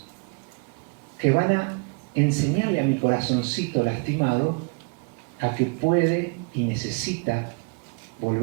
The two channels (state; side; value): quieter; left; 33.0 dB